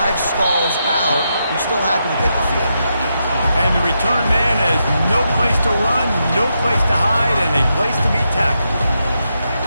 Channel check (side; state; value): both; inverted; correlation -0.83